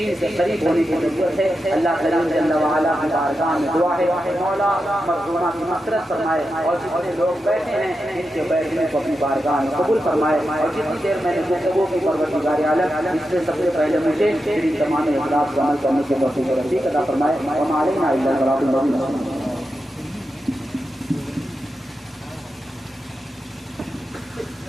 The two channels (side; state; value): both; normal; correlation 0.89